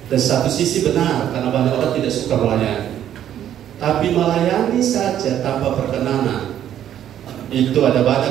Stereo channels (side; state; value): left; quieter; 10.7 dB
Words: Dan satu sisi benar, karena banyak orang tidak suka melayani. Tapi melayani saja tanpa perkenanan, itu ada